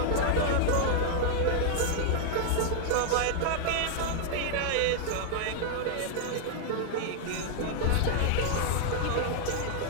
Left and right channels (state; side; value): different; both; correlation 0.00